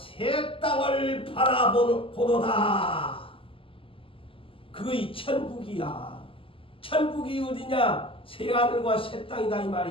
땅을 바라보도다. 그의 천국이야. 천국이 어디냐? 새 하늘과 새 땅이다 이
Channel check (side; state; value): right; late; 0.26 ms